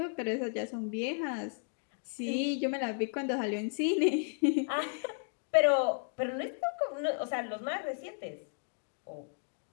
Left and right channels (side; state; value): right; silent; 55 dB below the other